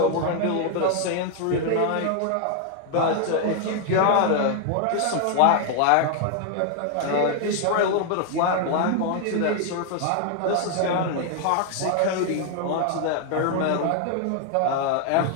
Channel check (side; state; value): both; different; correlation 0.00